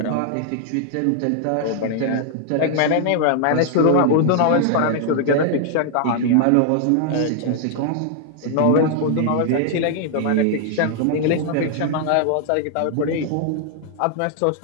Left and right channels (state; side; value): different; both; correlation 0.00